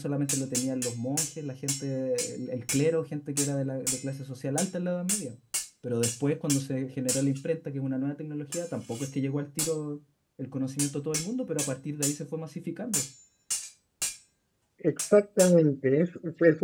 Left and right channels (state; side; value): identical; both; correlation 1.00